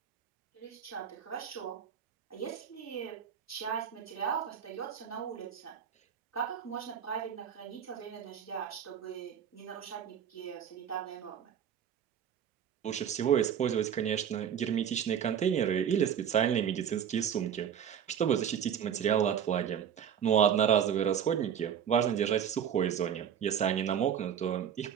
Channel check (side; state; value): left; quieter; 8.7 dB